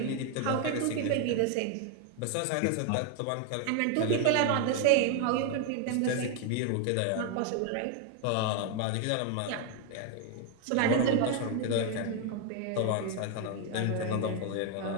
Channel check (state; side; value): different; both; correlation 0.01